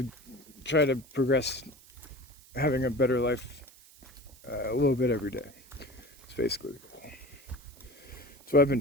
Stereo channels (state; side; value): noise; right; hiss, 24 dB below the sound